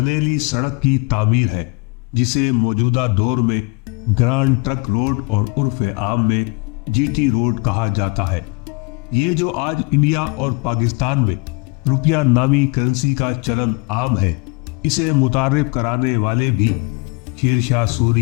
سڑک کی تعمیر ہے، جسے موجودہ دور میں گرانڈ ٹرک روڈ اور عرف عام میں جی ٹی روڈ کہا جاتا ہے۔ یہ جو آج انڈیا اور پاکستان میں روپیہ نامی کرنسی کا چلن عام ہے، اسے متعارف کرانے والے بھی شیر شاہ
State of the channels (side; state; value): right; quieter; 28.5 dB